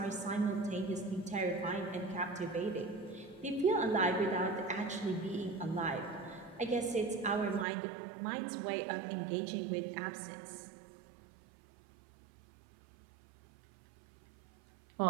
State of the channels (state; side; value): drops out; left; at 7.7 s